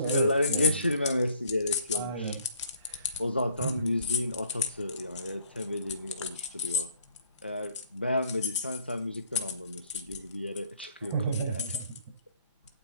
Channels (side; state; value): both; inverted; correlation -0.61